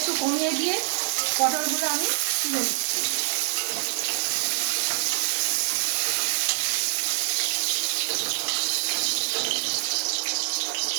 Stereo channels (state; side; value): silent; left; 59 dB below the other